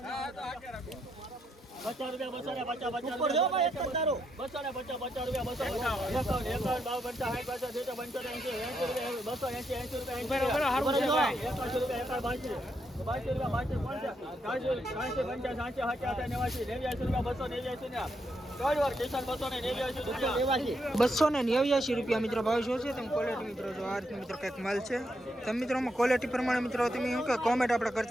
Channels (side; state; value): both; normal; correlation 0.79